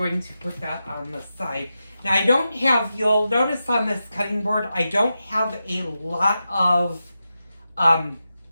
to put that on the side. Now I don't have, you'll notice on this cutting board, I don't have a lot of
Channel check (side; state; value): both; inverted; correlation -0.90